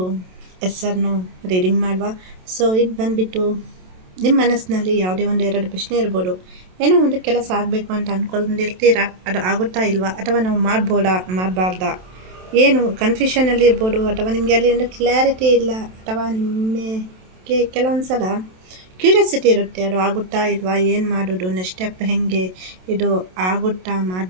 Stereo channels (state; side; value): late; left; 27 ms